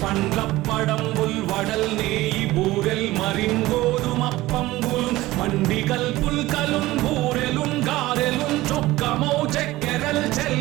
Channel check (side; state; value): left; quieter; 17.9 dB